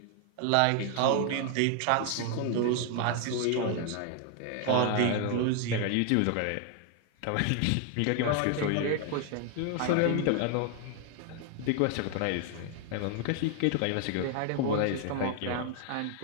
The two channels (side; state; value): both; different; correlation 0.00